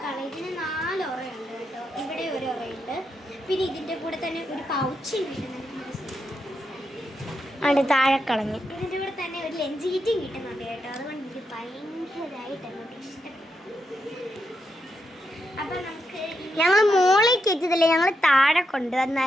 ഇതിന് 4 ഉറയുണ്ട് കേട്ടോ. ഇവിടെ ഒരു ഉറയുണ്ട്. പിന്നെ ഇതിൻ്റെ കൂടെ തന്നെ ഒരു പൗച്ച് കിട്ടുന്നുണ്ട്. താഴെ കളഞ്ഞു. ഇതിൻ്റെ കൂടെ തന്നെ ഒരു ലഞ്ച് കിറ്റും കിട്ടുന്നുണ്ട് കേട്ടോ. അതുകൊണ്ട് എനിക്ക് ഭയങ്കരമായിട്ട് അങ്ങോട്ട് ഇഷ്ടപ്പെട്ടു. അപ്പം നമുക്ക് ഞങ്ങൾ മോളിൽ കയറ്റിയതല്ലേ, ഞങ്ങൾ താഴെ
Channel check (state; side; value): normal; both; correlation 0.83